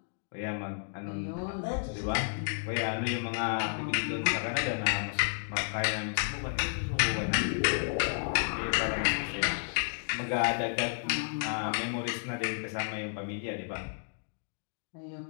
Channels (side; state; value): right; silent; digital silence